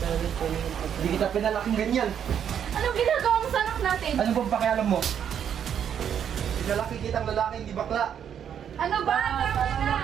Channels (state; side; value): quieter; left; 8.7 dB